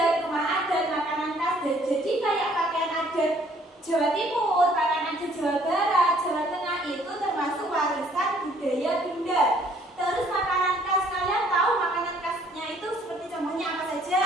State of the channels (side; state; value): both; normal; correlation 0.60